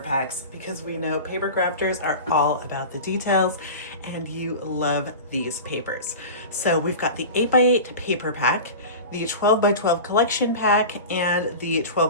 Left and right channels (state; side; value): inverted; both; correlation -0.31